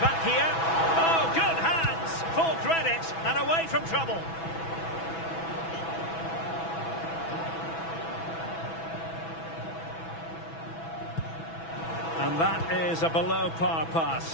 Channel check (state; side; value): late; right; 6.1 ms